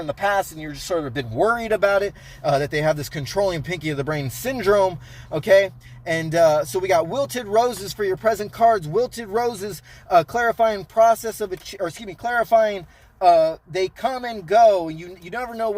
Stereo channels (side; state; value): both; identical; correlation 1.00